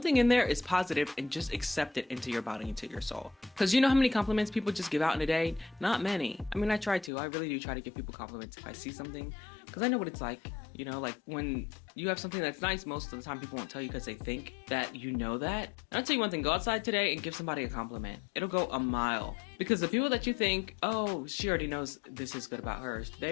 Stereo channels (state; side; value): drops out; right; at 7.1 s